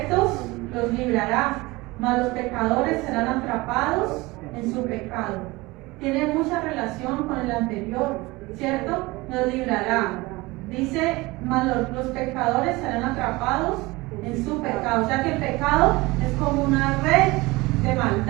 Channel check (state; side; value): quieter; left; 22.0 dB